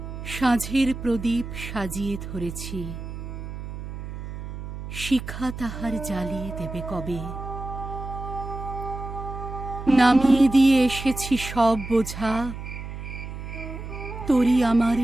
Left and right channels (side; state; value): right; noise; hum, 9 dB below the sound